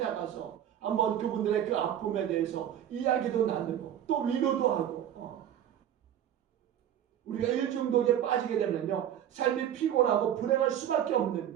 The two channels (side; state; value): left; quieter; 10.4 dB